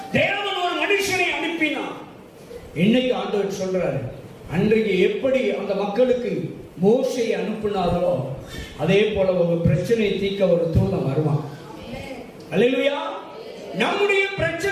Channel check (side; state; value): both; identical; correlation 1.00